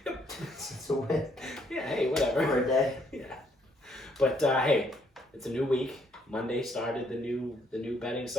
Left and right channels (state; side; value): normal; both; correlation 0.69